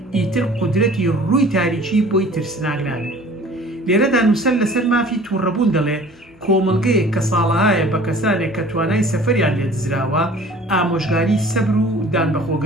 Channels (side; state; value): both; normal; correlation 0.48